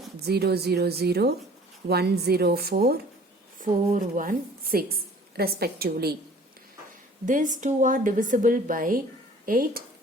000, 104, 416 respectively. These two are divisible by 8.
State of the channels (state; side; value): normal; both; correlation 0.50